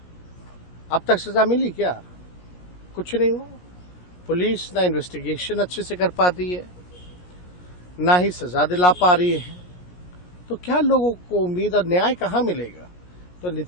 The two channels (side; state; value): right; late; 17 ms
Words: अब तक सजा मिली क्या? कुछ नहीं हुआ। पुलिस ना इन्वेस्टिगेशन अच्छे से कर पाती है, ना ही सजा दिला पा रही है। तो क्या लोगों को उम्मीद और न्याय कहाँ मिलेगा? तो